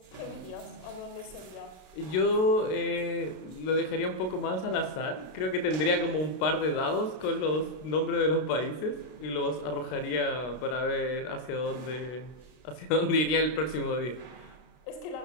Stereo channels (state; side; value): late; right; 33 ms